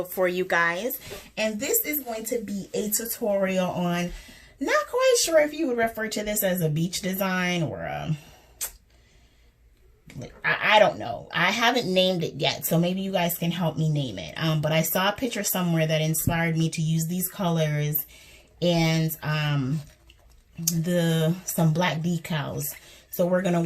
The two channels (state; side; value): identical; both; correlation 1.00